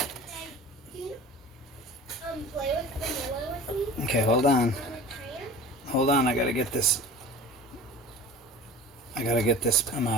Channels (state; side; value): normal; both; correlation 0.39